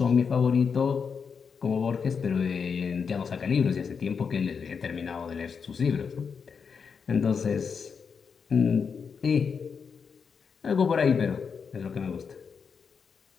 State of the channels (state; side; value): quieter; right; 6.0 dB